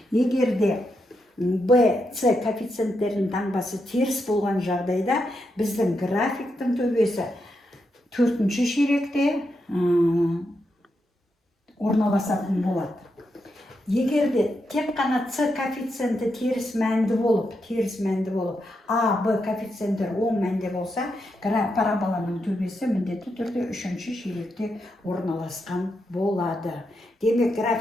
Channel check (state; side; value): normal; both; correlation 0.84